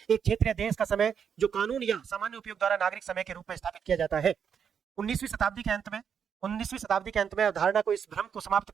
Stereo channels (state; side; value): quieter; left; 7.4 dB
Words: एक क्षेत्र या देश का समय जो कानून या सामान्य उपयोग द्वारा नागरिक समय के रूप में स्थापित किया जाता है। 19वीं शताब्दी के अंत में अवधारणा को, इस भ्रम को समाप्त